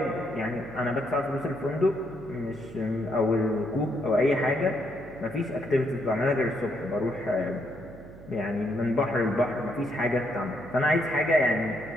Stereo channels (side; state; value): right; noise; hum, 17 dB below the sound